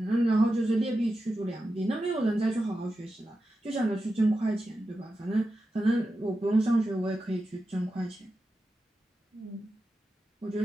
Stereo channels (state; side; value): normal; both; correlation 0.91